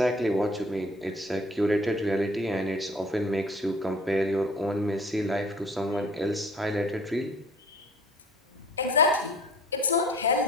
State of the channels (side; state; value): both; normal; correlation 0.50